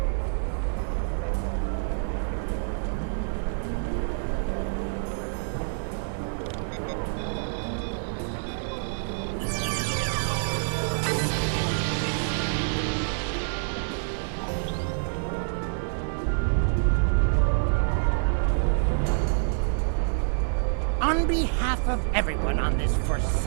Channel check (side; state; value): left; silent; 60 dB below the other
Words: On behalf of everyone on this